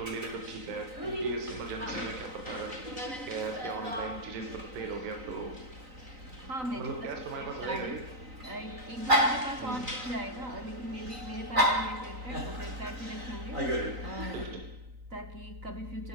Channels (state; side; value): late; left; 3.9 ms